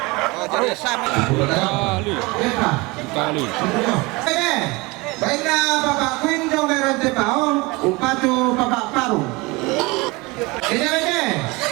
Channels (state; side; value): quieter; left; 24.4 dB